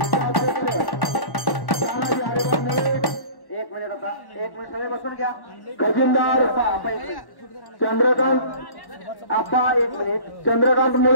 तानाजी हरिभाऊ मुळे. 1 मिनिट आता 1 मिनिट सगळे बसून घ्या. खजिनदार चंद्रकांत आप्पा 1 मिनिट. चंद्रकांत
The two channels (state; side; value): late; right; 1.1 ms